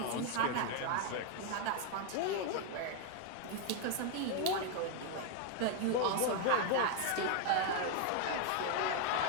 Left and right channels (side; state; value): both; different; correlation 0.01